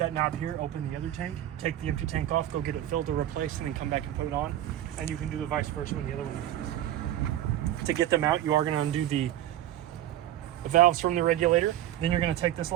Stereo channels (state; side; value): quieter; left; 12.6 dB